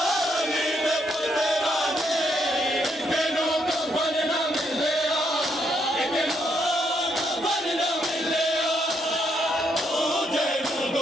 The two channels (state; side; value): normal; both; correlation 0.75